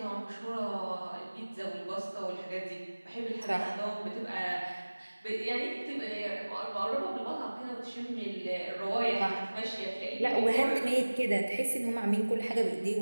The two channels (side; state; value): both; inverted; correlation -1.00